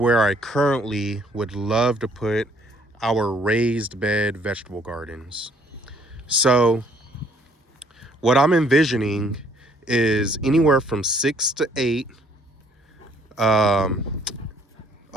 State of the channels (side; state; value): both; normal; correlation 0.63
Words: I currently would love to put our raised bed vegetable gardens. So what I'm envisioning is anywhere from 6 to 8